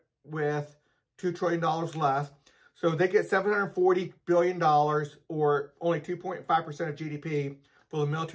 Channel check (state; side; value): identical; both; correlation 1.00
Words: with $2 trillion less. So they get $740 billion, or only 2.5% of GDP for the